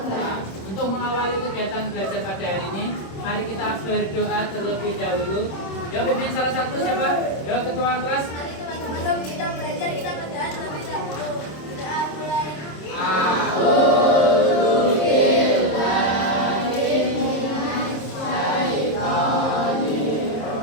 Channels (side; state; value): right; late; 26 ms